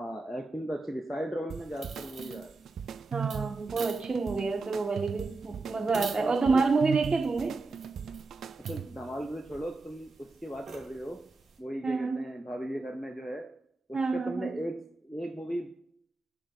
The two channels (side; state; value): left; quieter; 3.4 dB